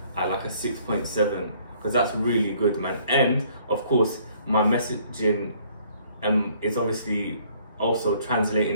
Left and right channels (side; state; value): both; inverted; correlation -0.61